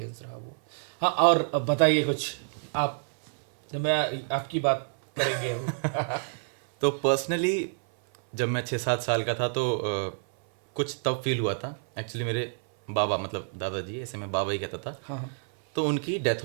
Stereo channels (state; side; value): silent; left; 57 dB below the other